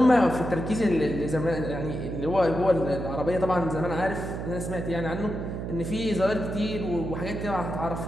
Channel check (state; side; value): noise; right; hum, 5 dB below the sound